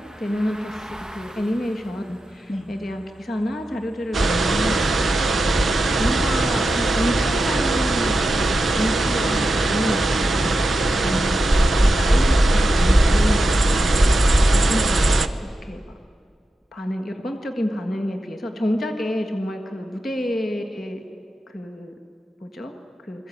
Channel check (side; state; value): both; normal; correlation 0.90